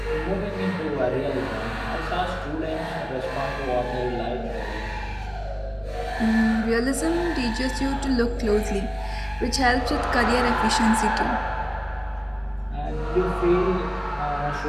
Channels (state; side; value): identical; both; correlation 1.00